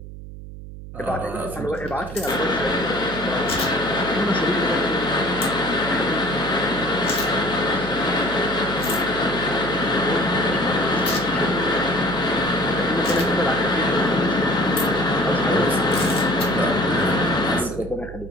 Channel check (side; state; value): right; noise; hum, 13 dB below the sound